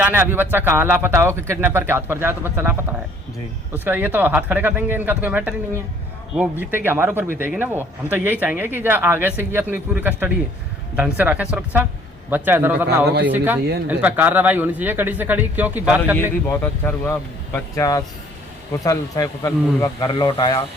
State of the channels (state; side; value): normal; both; correlation 0.58